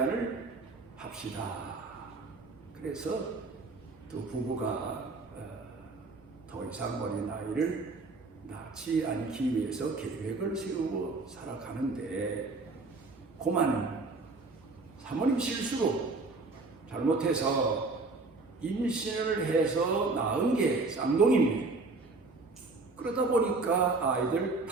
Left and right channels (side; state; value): left; quieter; 3.6 dB